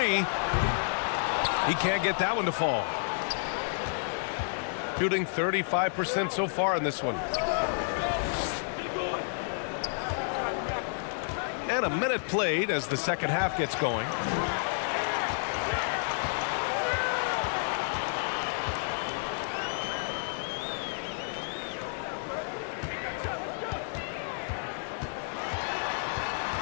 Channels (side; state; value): right; silent; digital silence